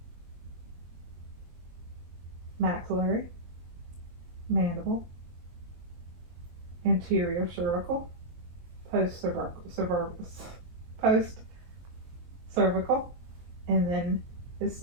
maxillary, mandible, anterior cervical, post cervical, and then the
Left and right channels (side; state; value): left; late; 23 ms